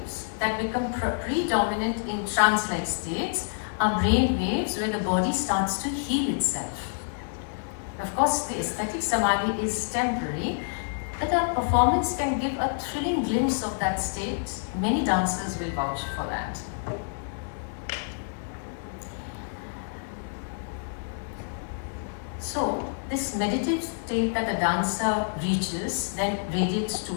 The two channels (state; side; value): silent; right; 60 dB below the other